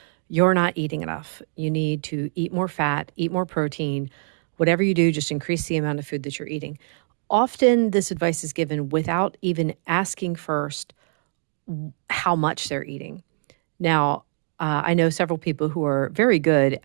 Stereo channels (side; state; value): left; silent; digital silence